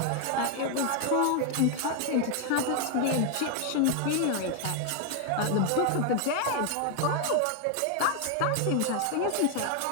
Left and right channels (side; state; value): both; different; correlation 0.00